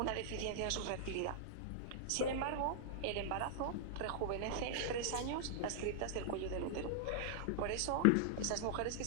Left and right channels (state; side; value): different; both; correlation -0.01